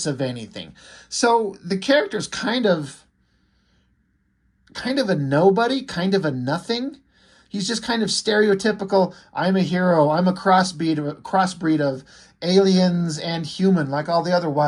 of anything. So the character's kind of a nobody, kind of a nothing. He's just kind of stereotypical, I'm a hero, I'm a crossbreed of aliens and human, like all the other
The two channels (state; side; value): identical; both; correlation 1.00